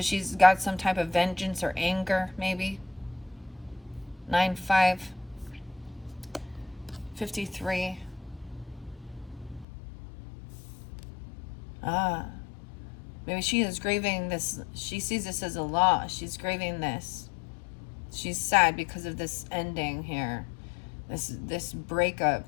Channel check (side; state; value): right; drops out; at 9.7 s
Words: she's got some type of vengeance or anger, maybe. 9-5-53. Maybe she is grieving this. She sees this as a loss. She's grieving this. She's sad because of this ending here, this